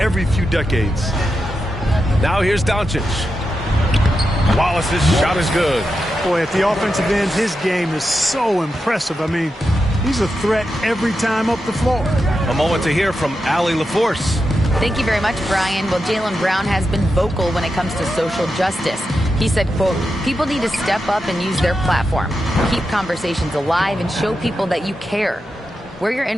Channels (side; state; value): both; normal; correlation 0.88